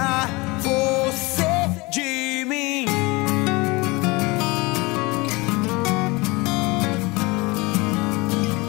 você de mim.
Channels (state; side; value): quieter; right; 24.7 dB